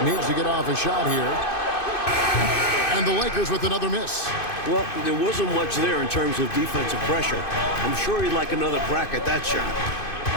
needs to get off a shot here. And the Lakers with another miss. Well, there wasn't much there in terms of defensive pressure. I'm sure he'd like another crack at that shot.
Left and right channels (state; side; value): late; right; 2.5 ms